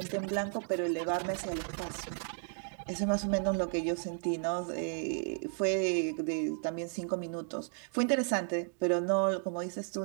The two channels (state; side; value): silent; left; 55 dB below the other